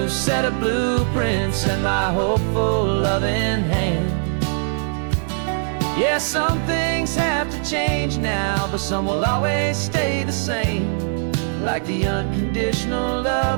set of blueprints and my hopeful loving hand. Yeah, some things have to change now, but some will always stay the same. Like the unconditional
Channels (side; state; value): left; silent; digital silence